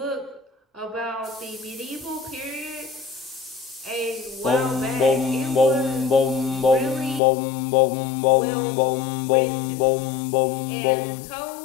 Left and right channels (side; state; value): right; drops out; at 7.2 s